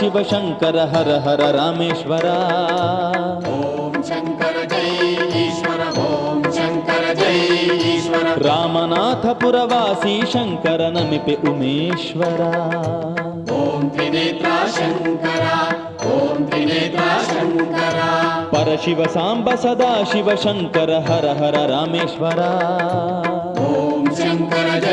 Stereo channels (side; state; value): both; identical; correlation 1.00